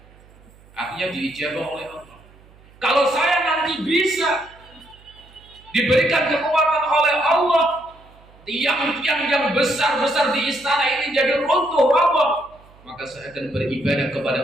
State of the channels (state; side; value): noise; right; hum, 26 dB below the sound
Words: Artinya diijabah oleh Allah. Kalau saya nanti bisa diberikan kekuatan oleh Allah, tiang-tiang yang besar-besar di istana ini jadi runtuh roboh, maka saya akan beribadah